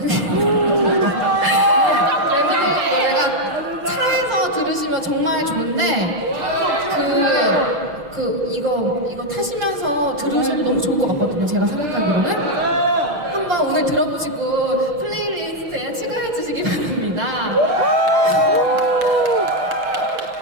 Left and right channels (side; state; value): left; late; 5.7 ms